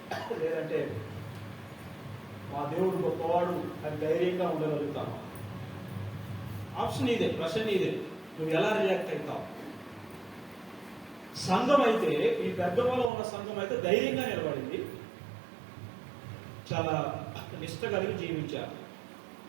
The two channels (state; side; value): drops out; left; at 13.1 s